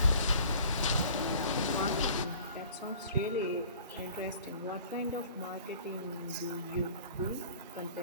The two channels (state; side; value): inverted; both; correlation -0.49